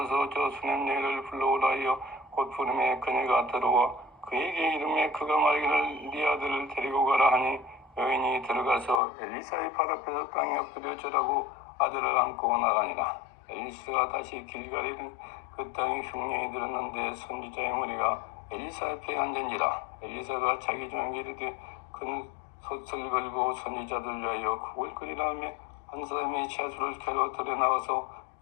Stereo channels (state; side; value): drops out; right; at 9.0 s